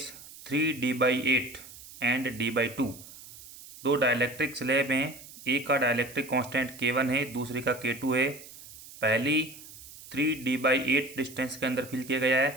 3D/8 and D/2। दो डाइलेक्ट्रिक स्लैब हैं, एक का डाइलेक्ट्रिक कांस्टेंट K1 है, दूसरी का K2 है। पहली 3D/8 डिस्टेंस के अंदर फिल किया गया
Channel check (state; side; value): noise; right; hiss, 17 dB below the sound